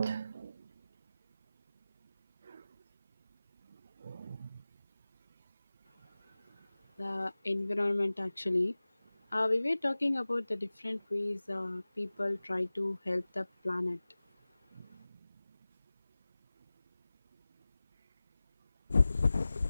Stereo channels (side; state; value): both; inverted; correlation -0.98